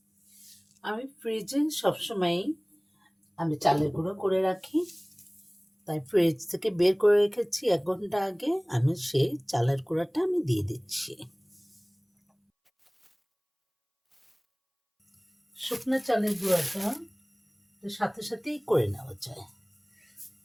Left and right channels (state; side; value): identical; both; correlation 1.00